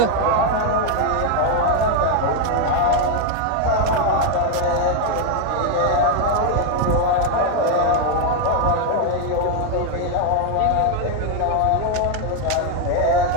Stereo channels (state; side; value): different; both; correlation 0.01